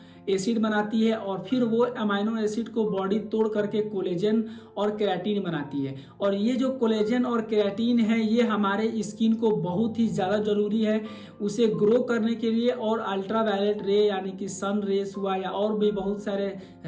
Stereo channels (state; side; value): identical; both; correlation 1.00